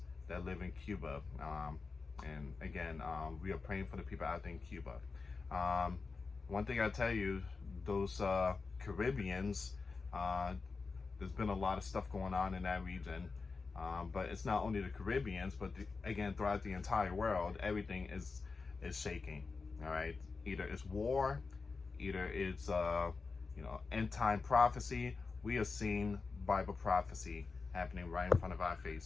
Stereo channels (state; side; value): quieter; right; 4.4 dB